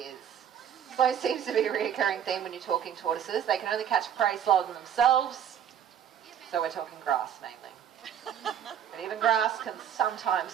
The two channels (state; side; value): quieter; left; 9.4 dB